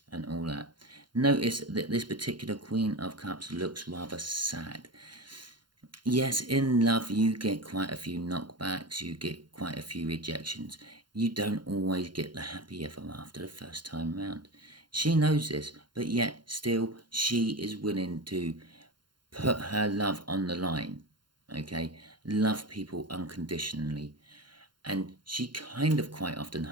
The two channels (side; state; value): left; late; 0.71 ms